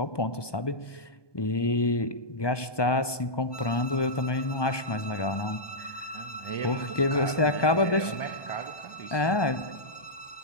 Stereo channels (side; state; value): right; late; 1.2 ms